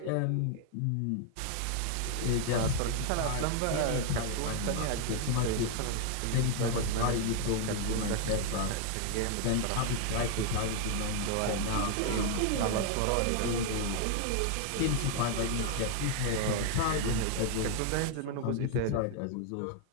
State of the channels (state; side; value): different; both; correlation 0.00